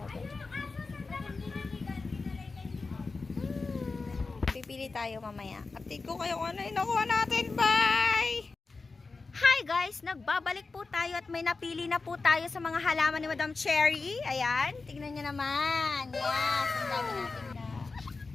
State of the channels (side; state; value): right; quieter; 4.0 dB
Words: Pipili tayo mamaya. Update ko kayo kung ano yung nakuha natin. Bye! Hi guys! Nagbabalik po tayo at may napili na po tayo sa mga halaman ni Madam Cherry. Ayan. Tignan nyo naman. Yes. Ang dami natin na.